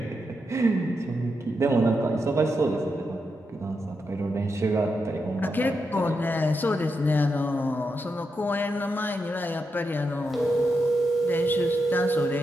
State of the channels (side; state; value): both; normal; correlation 0.84